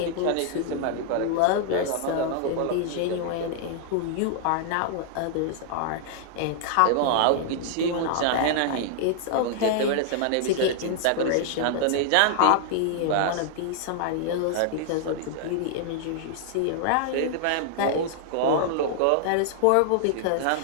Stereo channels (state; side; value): different; both; correlation -0.01